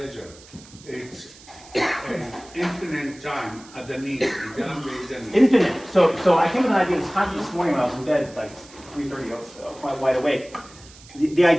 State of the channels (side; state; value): right; noise; hiss, 22 dB below the sound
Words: it's an infinite time at the need. Infinite. So I came with an idea this morning when I was in bed, like 3:30, quite wide awake. The